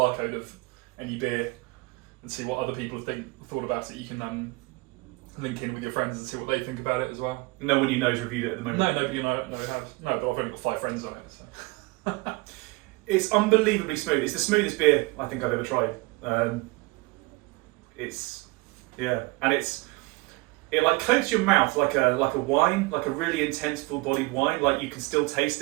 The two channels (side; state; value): left; quieter; 24.6 dB